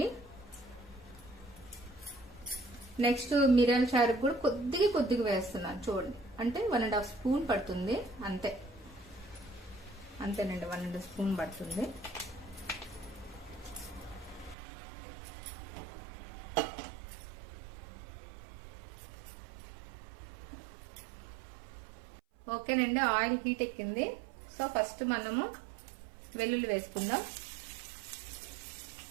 నెక్స్ట్ మిరియాల చారుకు కూడా కొద్దిగా వేస్తున్నాను, చూడండి. అంటే 1.5 స్పూన్ పడుతుంది, అంతేనండి, 1.5 స్పూన్ పడుతుంది. ఓకేనండి, ఆయిల్ హీట్ ఎక్కింది. సో ఫస్ట్ మనము వెల్లుల్లి వేసుకుందాం.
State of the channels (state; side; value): drops out; left; at 14.6 s